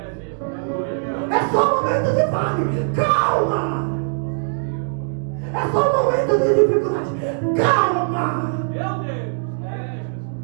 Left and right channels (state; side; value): silent; left; digital silence